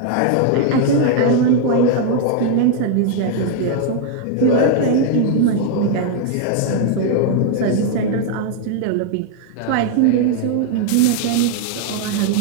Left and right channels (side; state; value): both; different; correlation 0.00